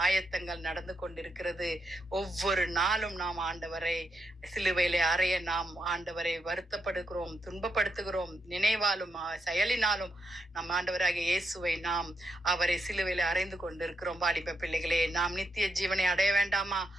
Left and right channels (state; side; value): normal; both; correlation 0.83